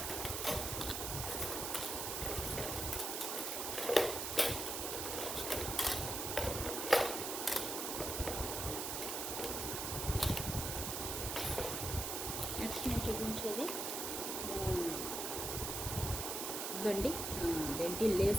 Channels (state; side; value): noise; right; hiss, 2 dB below the sound